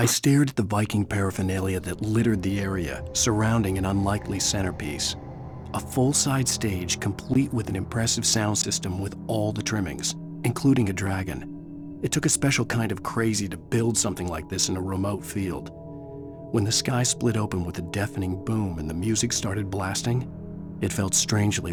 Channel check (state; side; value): identical; both; correlation 1.00